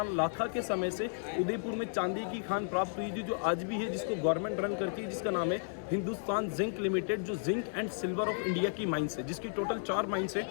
लाखा के समय से उदयपुर में चांदी की खान प्राप्त हुई थी, जो आज भी है, जिसको गवर्नमेंट रन करती है, जिसका नाम है हिंदुस्तान जिंक लिमिटेड, जो zinc and silver of India की माइंस है, जिसकी टोटल 4 माइंस है,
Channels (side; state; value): right; silent; digital silence